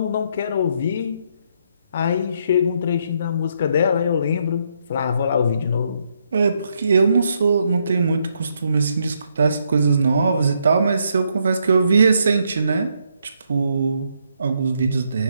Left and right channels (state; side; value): inverted; both; correlation -0.75